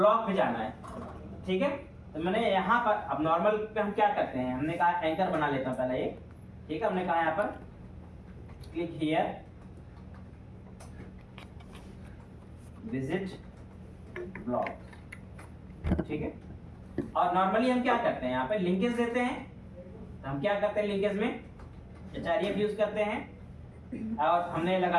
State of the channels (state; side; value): identical; both; correlation 1.00